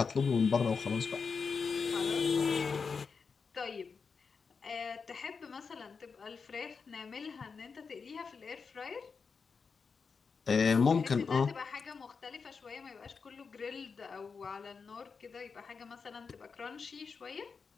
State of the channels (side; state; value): right; quieter; 5.3 dB